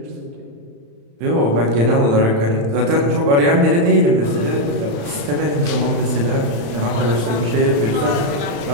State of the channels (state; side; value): late; left; 35 ms